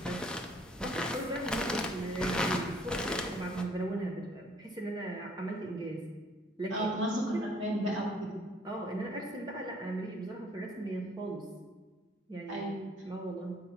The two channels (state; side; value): normal; both; correlation 0.60